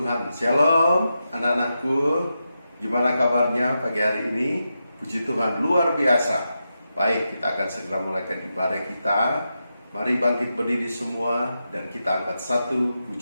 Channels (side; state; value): both; inverted; correlation -0.88